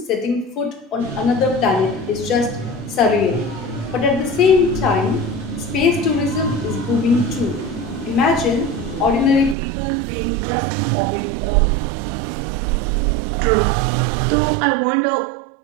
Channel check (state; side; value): drops out; left; at 9.6 s